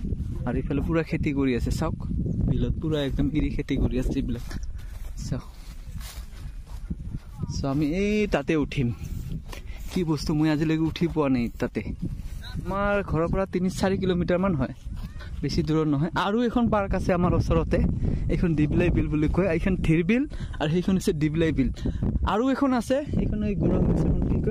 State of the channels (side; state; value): both; identical; correlation 1.00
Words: আৰু ইফালে পুৰা খেতি কৰি আছে চাওক বিলত পুৰা একদম ইৰি খেতি কৰি আছে এইবিলাক চাওক সো আমি এই তাতে উঠিম কি বস্তু মই আজিলৈকে উঠি পোৱা নাই তাতে আমাৰ ঘৰৰ পৰা 3-4 কিলোমিটাৰ মান হয় বেছি দূৰত নহয় আৰু এখন পাৰ্ক আছে আমাৰ ওচৰতে এইখন ডিবলাই বিল বুলি কয় এইখন থিৰ বিল আৰু সেইখন আছে ডিবলাই বিল আৰু এখন আছে এইখন এই গৰম এখন কি